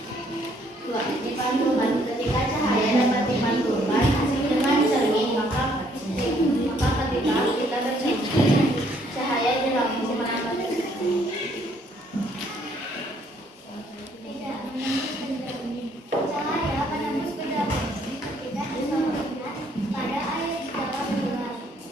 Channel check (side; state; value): both; normal; correlation 0.66